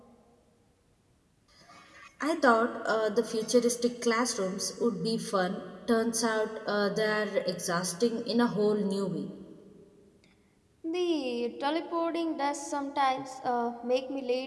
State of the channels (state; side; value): identical; both; correlation 1.00